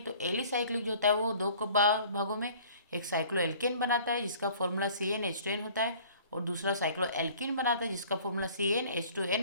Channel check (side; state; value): both; inverted; correlation -0.50